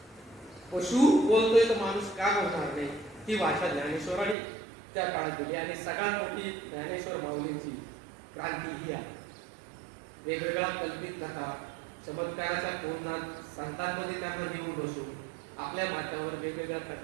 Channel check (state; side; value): drops out; left; at 4.4 s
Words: पशु बोलतोय तर माणूस का बोलणार नाही, ती भाषा ज्ञानेश्वरांनी त्या काळात दिली. आणि सगळ्यात मोठी ज्ञानेश्वर माऊलींची क्रांती ही आहे. वेगवेगळ्या कल्पित कथा, चमत्काराच्या कोणात संतांमध्ये त्यांना घेऊन बसून आपल्या माथ्यावर वेगवेगळ्या